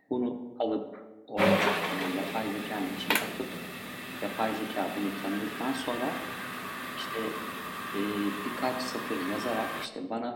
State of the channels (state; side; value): identical; both; correlation 1.00